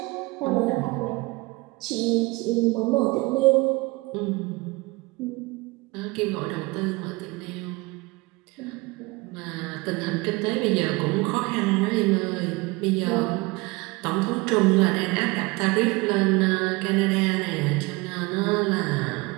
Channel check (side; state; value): left; quieter; 24.1 dB